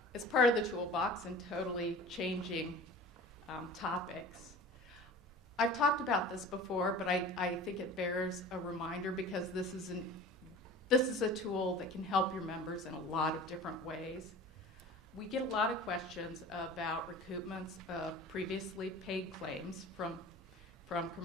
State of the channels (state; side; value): normal; both; correlation 0.40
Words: as part of the toolbox and totally changing topics, I've talked about this before, but I think it bears a reminder because this is a tool that can help your members in a lot of different ways. We get a lot of questions about recoupments of previously paid claims from